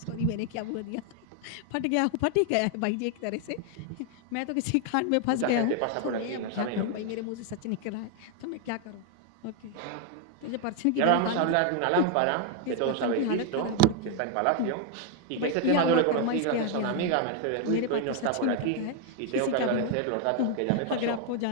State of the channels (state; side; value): different; both; correlation 0.01